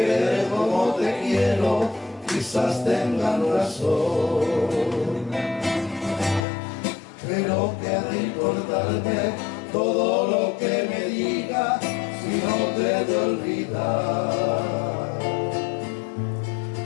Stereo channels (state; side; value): drops out; right; at 6.4 s